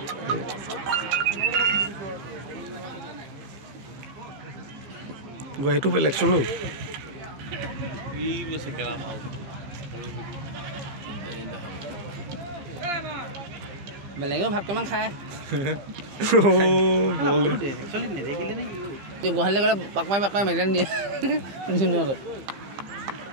গুৱাহাটীটো বেলেগচোন ই বেছি খেলা পাও বেলেগে ভাত কেমান খায় বল একচুয়ালি নেদেখিলে নে গুৱাহাটীলৈ গ'লে পাক মাৰি মেডেল দিয়ে জুনিয়ৰত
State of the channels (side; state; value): left; late; 15 ms